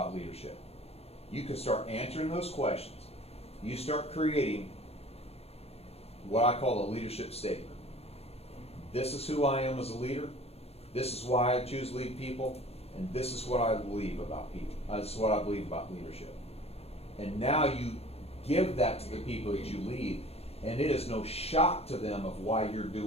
leadership? You can start answering those questions. You start creating what I call a leadership statement. This is who I am as a leader. This is why I choose to lead people. And this is what I believe about people. This is what I believe about leadership. And now you give that to the people that you lead, and it is no shock to them of why you're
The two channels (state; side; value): late; right; 0.29 ms